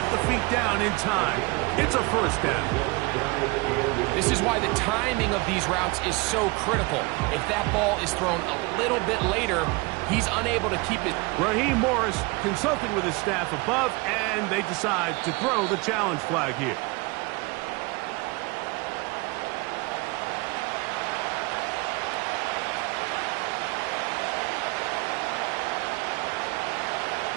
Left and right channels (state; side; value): quieter; left; 26.1 dB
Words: the feet down in time. It's a 1st down. This is why the timing of these routes is so critical. If that ball is thrown a little bit later, he's unable to keep it. Raheem Morris consulting with his staff above, and they decide to throw the challenge flag here.